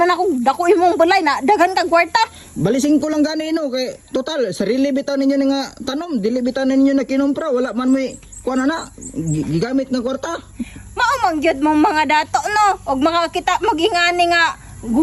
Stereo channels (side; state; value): both; identical; correlation 1.00